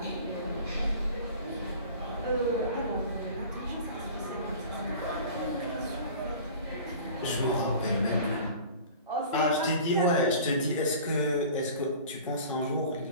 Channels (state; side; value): inverted; both; correlation -0.42